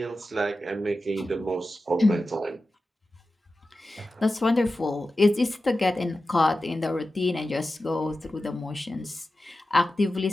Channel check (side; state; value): both; normal; correlation 0.93